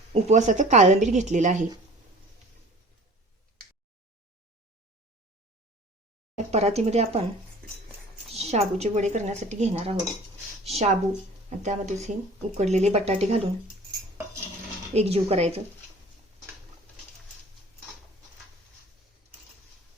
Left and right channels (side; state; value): both; normal; correlation 0.46